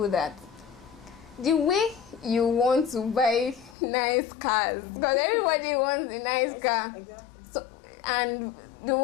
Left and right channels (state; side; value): drops out; right; at 3.8 s